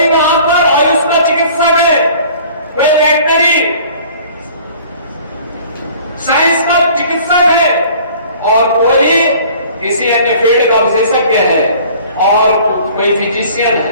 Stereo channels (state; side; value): inverted; both; correlation -0.50